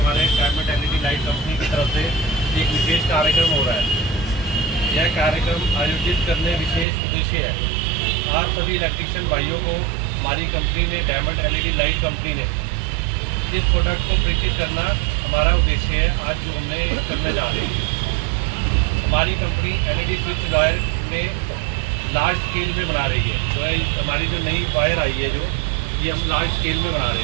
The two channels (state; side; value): drops out; left; at 6.9 s